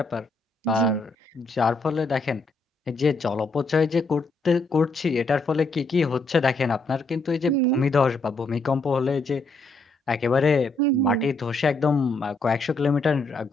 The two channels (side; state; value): right; quieter; 3.2 dB